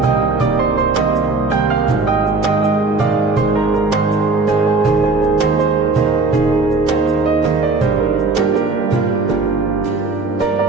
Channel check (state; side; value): quieter; left; 3.7 dB